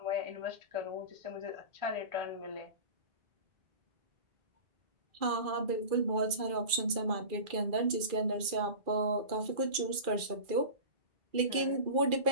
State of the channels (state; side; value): late; left; 2.3 ms